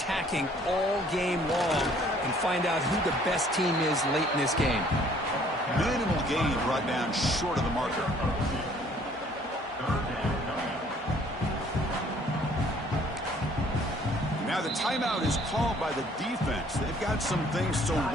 all game long, and find out who the best team is late in this game. Minimal gain brought down short of the marker. Now the timeout is called by the defense. They've got some things to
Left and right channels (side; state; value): both; normal; correlation 0.59